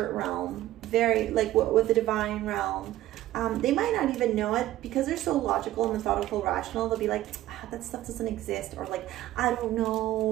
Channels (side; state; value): left; quieter; 14.6 dB